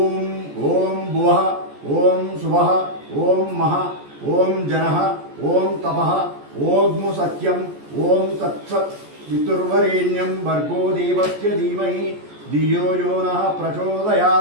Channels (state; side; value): late; left; 14 ms